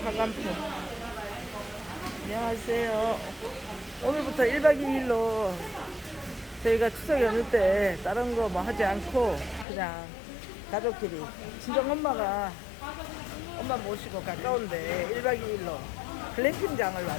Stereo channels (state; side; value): drops out; right; at 9.7 s